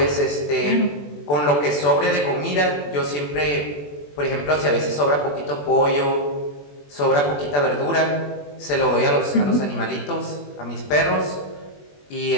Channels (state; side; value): late; right; 21 ms